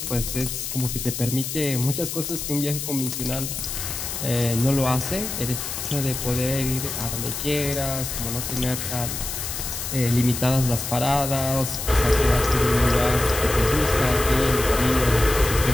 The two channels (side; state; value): left; noise; hiss, 5 dB below the sound